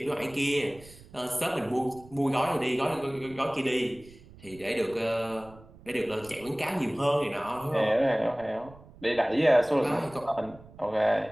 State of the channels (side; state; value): right; noise; rumble, 21 dB below the sound